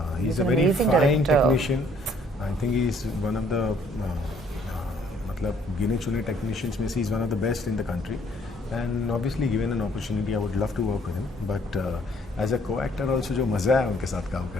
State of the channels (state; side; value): normal; both; correlation 0.63